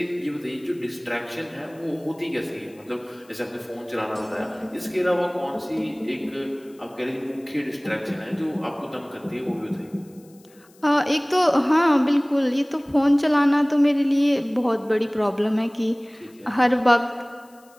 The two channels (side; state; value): left; noise; hiss, 29 dB below the sound